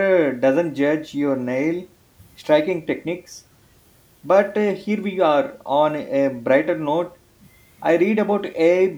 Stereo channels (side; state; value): both; identical; correlation 1.00